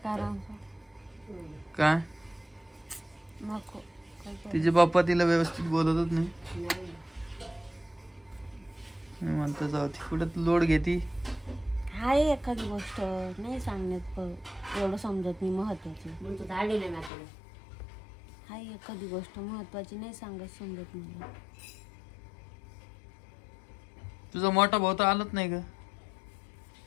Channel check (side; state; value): right; drops out; at 17.1 s